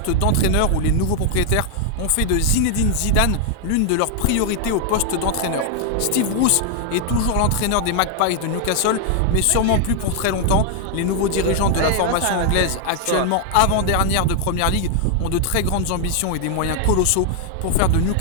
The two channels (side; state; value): both; different; correlation 0.00